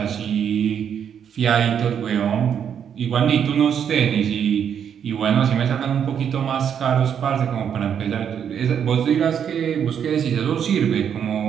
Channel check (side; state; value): left; quieter; 8.3 dB